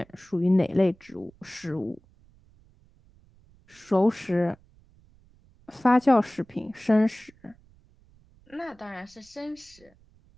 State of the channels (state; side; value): noise; right; rumble, 29 dB below the sound